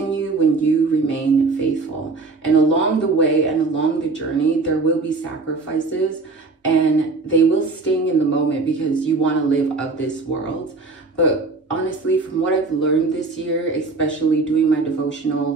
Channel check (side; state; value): left; quieter; 3.8 dB